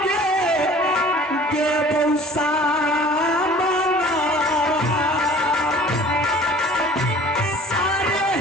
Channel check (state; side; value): normal; both; correlation 0.47